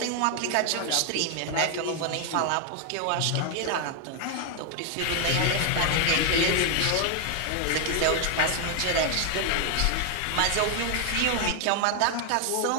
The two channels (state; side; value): different; both; correlation 0.00